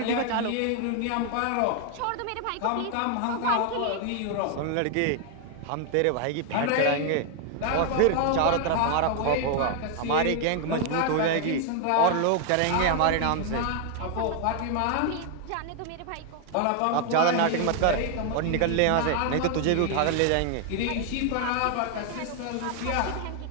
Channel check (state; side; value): different; both; correlation 0.00